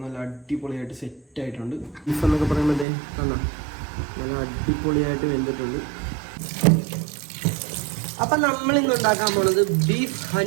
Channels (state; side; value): drops out; left; at 2.9 s